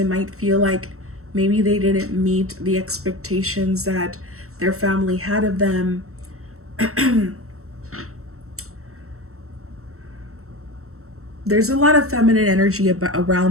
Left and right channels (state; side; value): late; left; 0.64 ms